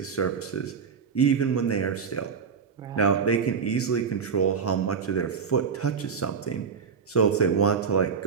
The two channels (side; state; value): left; quieter; 6.1 dB